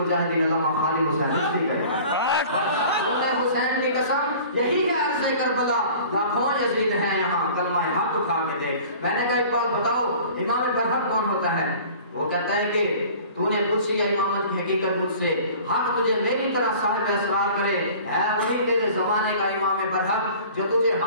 علامہ خالد حسین نقوی کرے. حسین کی قسم یہی ہے عرض کربلا, لاکھوں یزید ہیں یہاں کلمہ حق اٹھا کے دے. میں نے کہا ایک بات بتاؤ, امام برحق کون ہوتا ہے؟ وہ کہتا ہے کہ تو نے پوچھی ہے امامت کی حقیقت مجھ سے, حق تجھے میری طرح صاحب اسرار کرے, ہے وہی تیرے زمانے کا امام برحق جو تجھے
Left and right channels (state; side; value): inverted; both; correlation -0.45